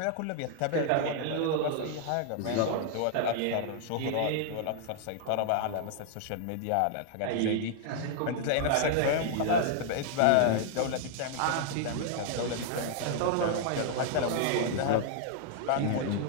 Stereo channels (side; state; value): both; different; correlation 0.00